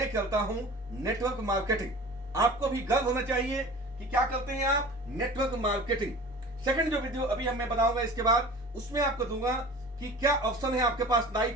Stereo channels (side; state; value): both; normal; correlation 0.40